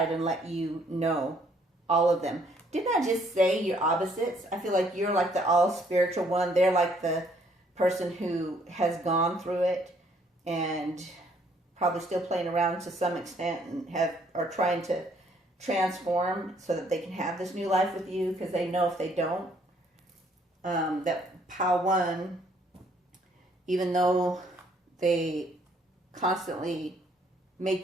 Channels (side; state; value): both; normal; correlation 0.65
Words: and let you know all of them. Didn't I just say you're opposites? I feel like you're like the all spiritual one. They're like the person who has gone through it and probably still playing around to some extent and are trying to transform so that they can have this new life with you, because they know if they don't, that Power One, even though they constantly